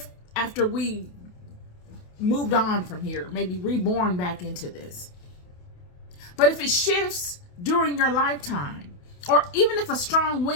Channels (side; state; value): right; late; 28 ms